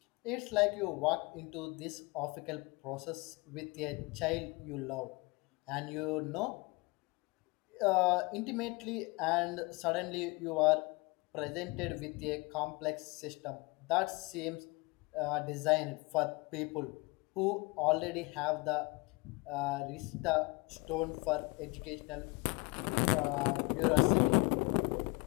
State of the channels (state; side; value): quieter; right; 26.5 dB